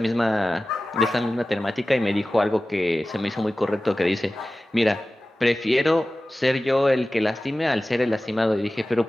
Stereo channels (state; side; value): normal; both; correlation 0.96